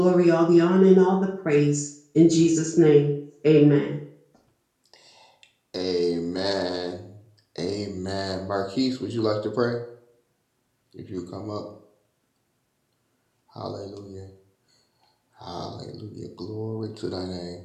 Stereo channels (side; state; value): both; identical; correlation 1.00